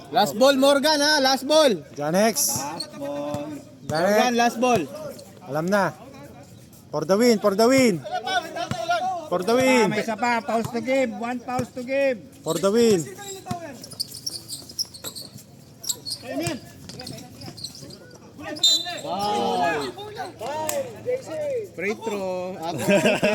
Last ball, Morgan ha. Last ball. John X. Last ball. Morgan, last ball. Alam na. For the win. For the win. May isa pa. Pause to game. 1 pause to game. For the win. Free throw.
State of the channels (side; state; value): both; identical; correlation 1.00